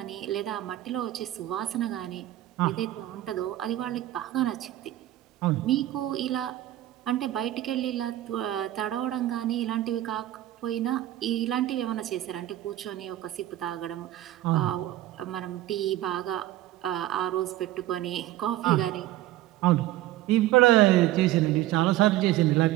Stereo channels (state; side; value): quieter; left; 14.6 dB